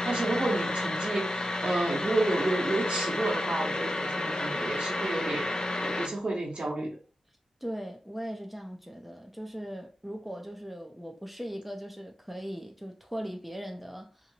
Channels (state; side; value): normal; both; correlation 0.89